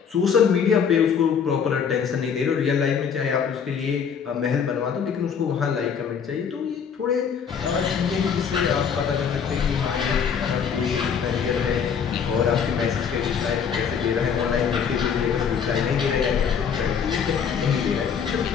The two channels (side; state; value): right; quieter; 7.0 dB